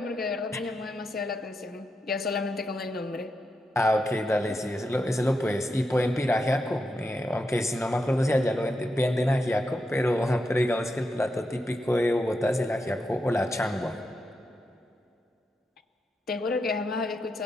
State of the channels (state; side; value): normal; both; correlation 0.85